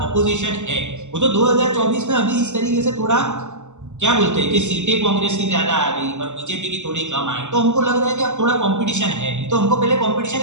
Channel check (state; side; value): late; left; 0.84 ms